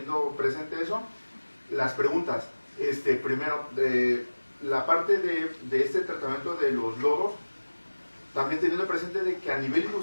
presente eso, las preguntas. Primero, la parte de este tratamiento de los lodos, también teniendo presente de que a nivel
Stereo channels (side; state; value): both; inverted; correlation -1.00